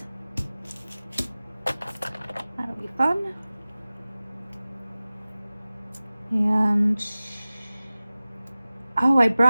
That'll be fun. And I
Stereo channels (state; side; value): inverted; both; correlation -0.97